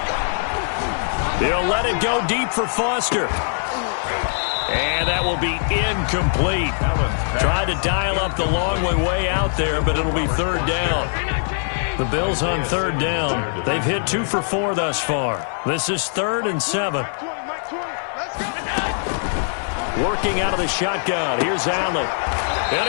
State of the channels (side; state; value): right; silent; digital silence